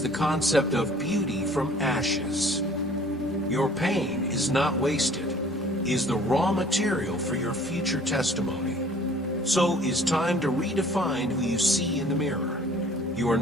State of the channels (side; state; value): both; normal; correlation 0.52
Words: the concept of beauty from ashes. Your pain is not wasted, is the raw material for your future testimony. So is time to redefine who you see in the mirror. You are